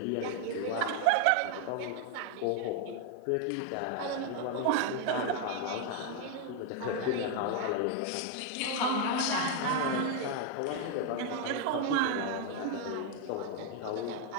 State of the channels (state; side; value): different; both; correlation 0.01